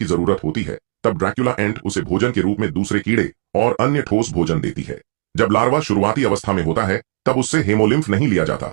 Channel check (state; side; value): silent; left; 61 dB below the other